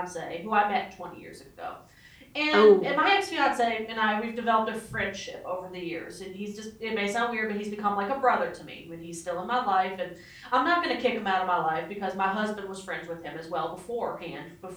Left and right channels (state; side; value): identical; both; correlation 1.00